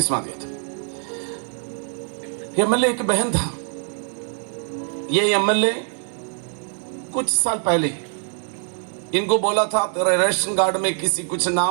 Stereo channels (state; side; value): silent; left; 56 dB below the other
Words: दिया था। एमएलए एक बहन था। ये एमएलए कुछ साल पहले इनको बोला था, तेरा रेशन कार्ड में किसी कुछ